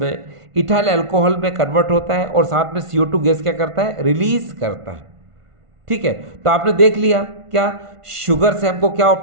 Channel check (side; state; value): left; late; 1.5 ms